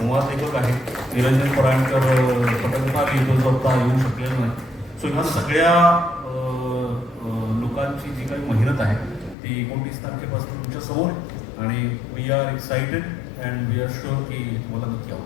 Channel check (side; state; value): right; drops out; at 9.3 s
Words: लेखक आहे, निरंजन पराणकर पटकथा लिहितो जो आता येऊ शकलेला नाही. सो ह्या सगळ्या लोकांची जी काही मेहनत आहे ती 29 तारखेपासून तुमच्या समोर आहे आणि we are excited and we are sure की तुम्हाला नक्की